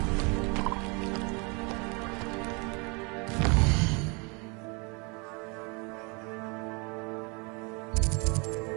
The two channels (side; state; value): left; quieter; 31.3 dB